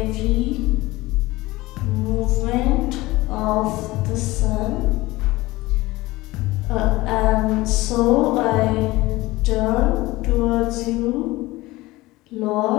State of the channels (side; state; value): right; quieter; 19.7 dB